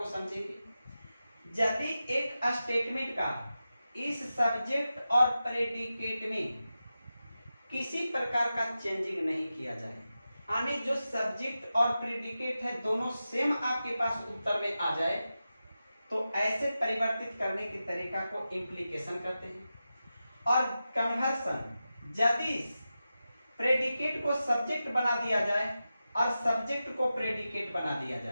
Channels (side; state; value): both; inverted; correlation -0.92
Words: समझेंगे। यदि एक स्टेटमेंट का इस सब्जेक्ट और प्रेडिकेट में किसी प्रकार का चेंजिंग नहीं किया जाए, यानी जो सब्जेक्ट और प्रेडिकेट है दोनों सेम आपके पास उत्तर में आ जाए, तो ऐसे परिवर्तित करने के तरीका को इम्प्लीकेशन कहते हैं। और कन्वर्सन, यदि प्रेडिकेट को सब्जेक्ट बना दिया जाए और सब्जेक्ट को प्रेडिकेट बना दिया